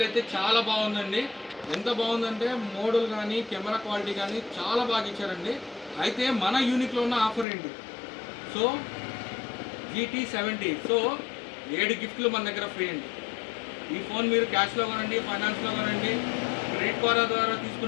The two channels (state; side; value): drops out; right; at 7.5 s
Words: అయితే చాలా బాగుందండి. ఎంత బాగుందంటే మోడల్ కానీ కెమెరా క్వాలిటీ కానీ చాలా బాగా ఇచ్చారండి. అయితే మన యూనిక్లో ఉన్న ఆఫర్ ఏంటి? సో GT 70, సో 7 గిఫ్ట్లు మన దగ్గర ఫ్రీ అండి. ఈ ఫోన్ మీరు క్యాష్లో కొనండి, ఫైనాన్స్లో కొనండి, క్రెడిట్ కార్డ్ ద్వారా